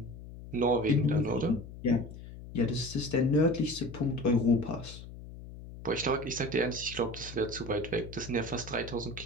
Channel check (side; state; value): left; noise; hum, 14 dB below the sound